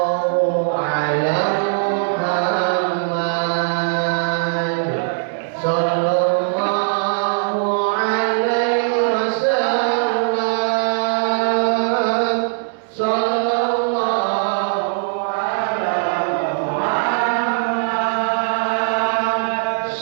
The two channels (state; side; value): silent; left; 66 dB below the other